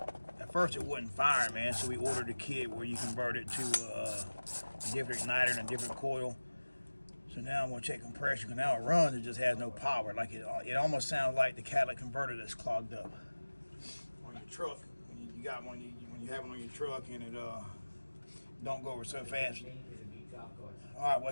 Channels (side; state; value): both; inverted; correlation -1.00